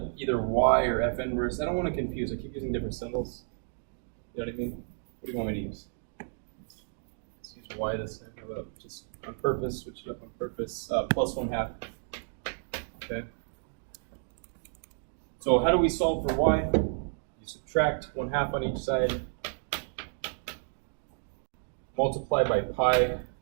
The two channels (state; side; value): silent; left; digital silence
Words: either y or f inverse. I don't want to confuse. I keep using different symbols. You know what I mean? What do you want me to use? Let's use y this time. How about just on purpose, switch it up on purpose, plus 1/2. Okay. So how do we solve for y? You subtract 1/2 on each side, multiply by pi.